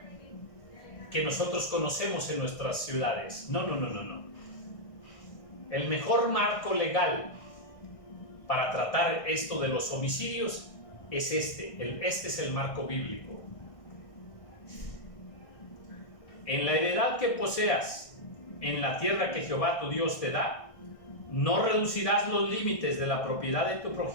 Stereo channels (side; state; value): right; late; 1.6 ms